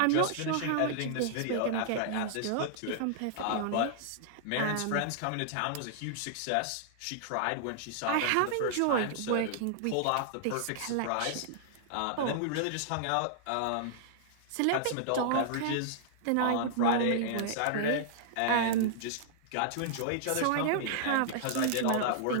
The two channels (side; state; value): both; different; correlation -0.01